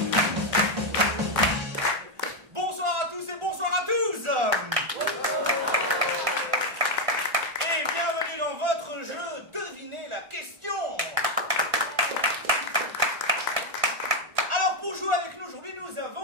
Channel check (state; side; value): late; left; 1.5 ms